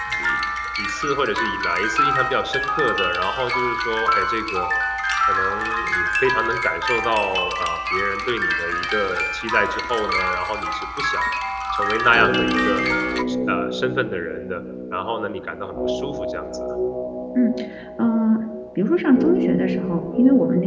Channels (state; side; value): identical; both; correlation 1.00